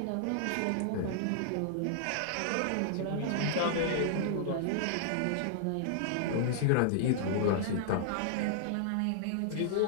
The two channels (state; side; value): different; both; correlation -0.01